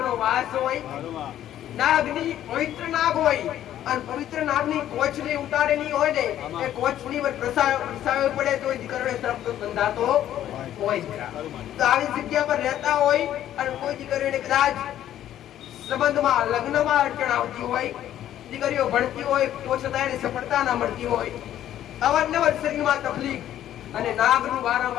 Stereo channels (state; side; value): quieter; right; 11.8 dB